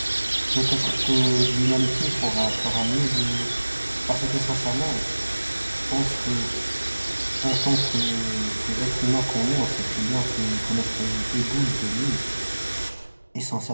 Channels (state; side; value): inverted; both; correlation -1.00